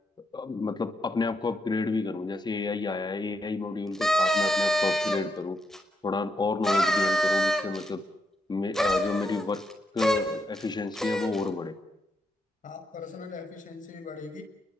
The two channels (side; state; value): both; normal; correlation 0.80